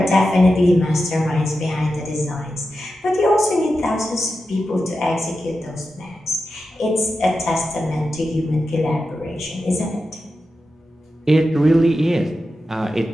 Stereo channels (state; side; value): normal; both; correlation 0.90